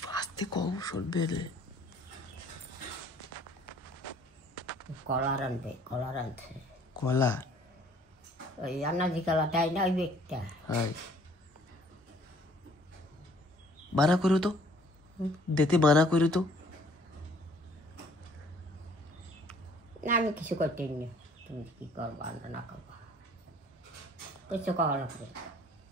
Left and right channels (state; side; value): normal; both; correlation 0.57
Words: আস্তে কম শুনবে রে কলা রাঁধবে কলা রাঁধছে কলা ওই আনাজি কলা দেয় না ওই ব্যক্তিটা হাই মানা করো তো দিতে মানা করো তো না আমি কিছু করতে নি তুমি কি করবা না করবা কিছু করা লাগবে